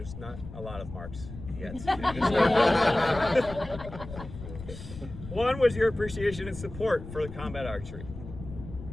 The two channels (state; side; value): noise; left; rumble, 12 dB below the sound